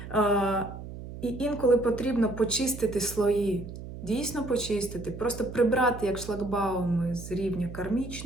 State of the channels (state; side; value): noise; right; hum, 11 dB below the sound